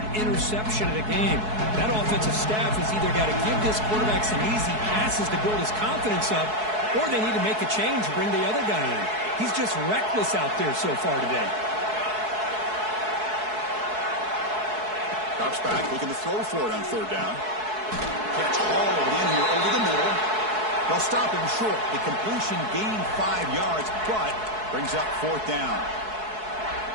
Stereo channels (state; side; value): late; left; 4.7 ms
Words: interception of the game. That offensive staff has either got to give this quarterback some easy passes to build his confidence up, or they need to make a change and bring the other guy in. He's just reckless out there so far today. Drops back, looking to throw for it on 3rd down. Catch hauled in here over the middle. They'll stop him short. The completion gained 5 yards, but brings up 4th down.